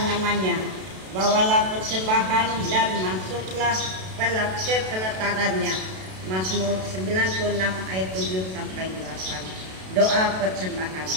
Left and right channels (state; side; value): late; left; 32 ms